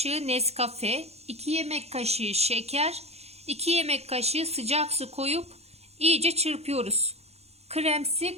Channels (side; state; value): left; late; 0.31 ms